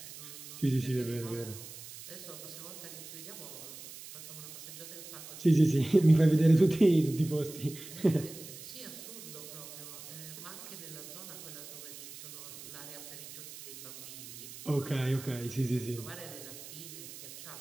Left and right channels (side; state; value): right; noise; hiss, 13 dB below the sound